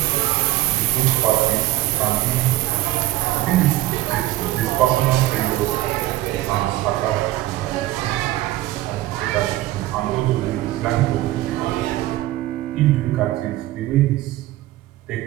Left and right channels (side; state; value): left; quieter; 16.1 dB